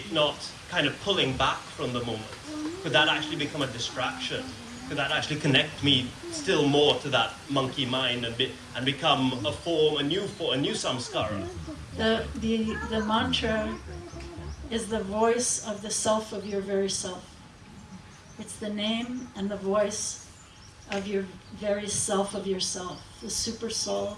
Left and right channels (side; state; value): both; identical; correlation 1.00